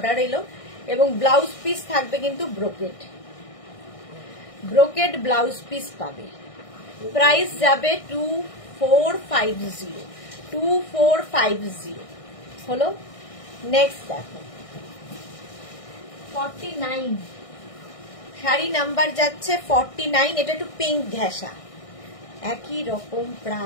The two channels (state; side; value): late; right; 1.6 ms